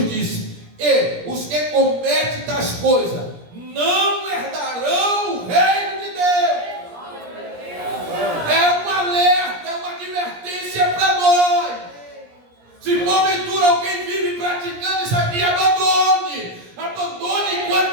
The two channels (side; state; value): left; late; 17 ms